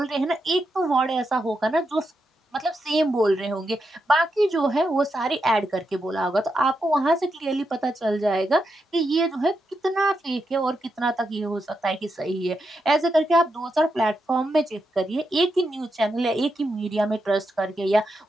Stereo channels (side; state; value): both; normal; correlation 0.84